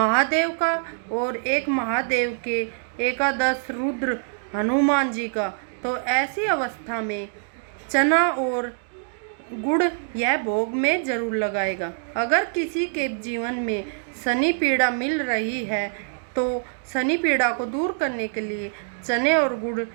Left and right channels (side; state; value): left; silent; digital silence